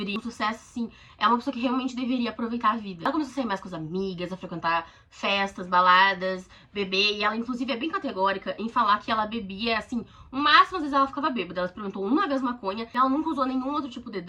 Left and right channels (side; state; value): both; identical; correlation 1.00